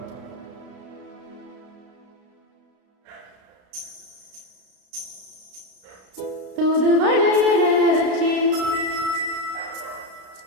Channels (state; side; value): late; left; 33 ms